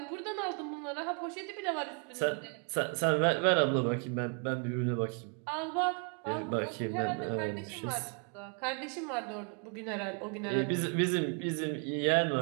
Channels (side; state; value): left; quieter; 39.4 dB